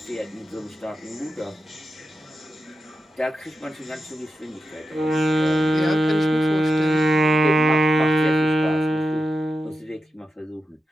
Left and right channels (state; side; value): normal; both; correlation 0.90